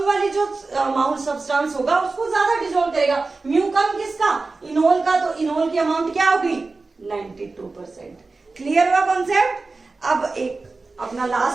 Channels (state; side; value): quieter; left; 3.7 dB